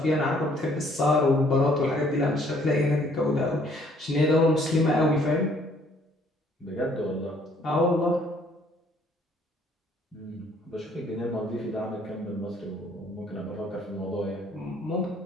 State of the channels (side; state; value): both; normal; correlation 0.62